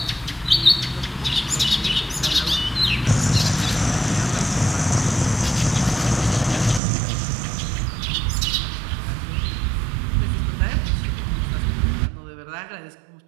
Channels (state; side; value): drops out; left; at 6.8 s